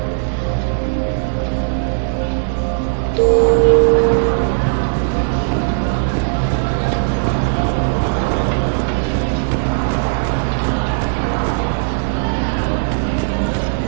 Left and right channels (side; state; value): left; silent; digital silence